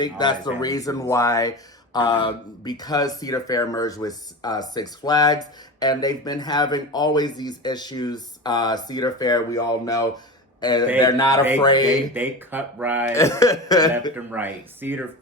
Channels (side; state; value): both; normal; correlation 0.27